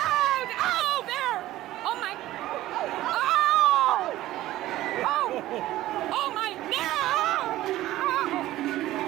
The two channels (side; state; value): left; quieter; 15.5 dB